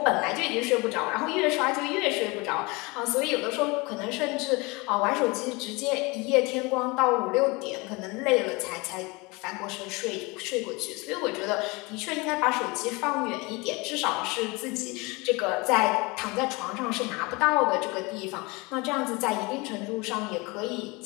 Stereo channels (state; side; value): quieter; right; 25.9 dB